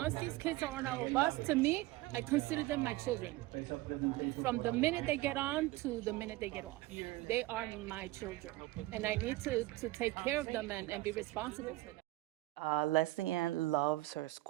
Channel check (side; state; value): left; quieter; 18.7 dB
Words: these kids are on our bus, to me, I consider them my children. From the minute they get on to the minute they get off, they are my children, and I need to take care of them and be responsible for them. Leslie Ann loves her